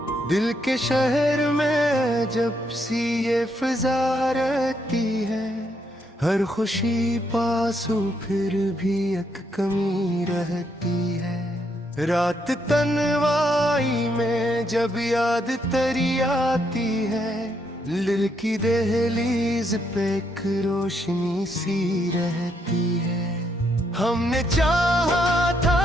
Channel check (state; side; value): normal; both; correlation 0.76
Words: दिल के शहर में जब सी ये फिजा रहती है, हर खुशी पासू फिर भी एक कमी रहती है। रात तन्हाई में जब याद तेरी आती है, दिल की दहलीज पे एक रोशनी सी रहती है। हमने चाहा था